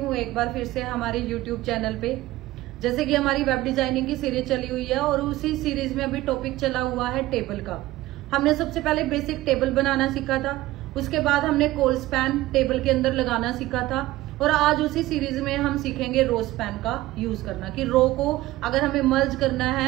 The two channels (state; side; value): quieter; left; 17.1 dB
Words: एक बार फिर से हमारे यूट्यूब चैनल पे। जैसे कि हमारी वेब डिजाइनिंग की सीरीज चली हुई है और उसी सीरीज में अभी टॉपिक चला हुआ है टेबल का। हमने सबसे पहले बेसिक टेबल बनाना सीखा था, उसके बाद हमने कॉल स्पैन टेबल के अंदर लगाना सीखा था और आज उसी सीरीज में हम सीखेंगे रो स्पैन का यूज करना, कि रो को अगर हमें मर्ज करना